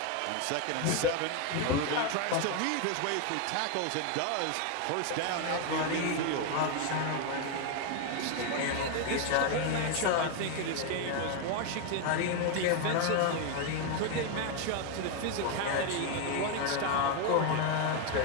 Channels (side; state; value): both; different; correlation 0.01